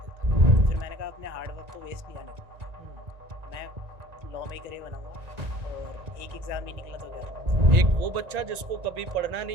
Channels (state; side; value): late; left; 1.9 ms